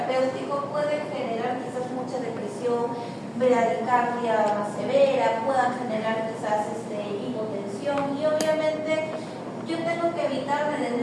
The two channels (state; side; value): identical; both; correlation 1.00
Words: pueden generar quizás mucha depresión, bradicardia más severa, puedan generar quizás hipotensión, y obviamente yo tengo que evitar